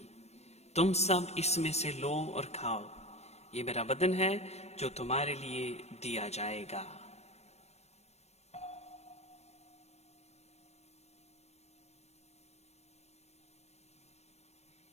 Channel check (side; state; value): right; late; 0.31 ms